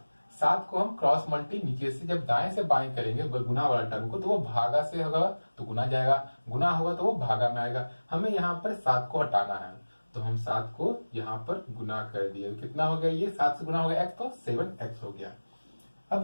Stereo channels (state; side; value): inverted; both; correlation -1.00